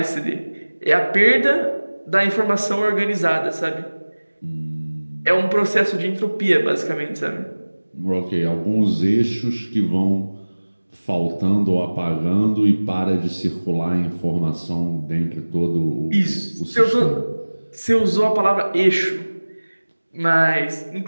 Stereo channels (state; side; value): inverted; both; correlation -1.00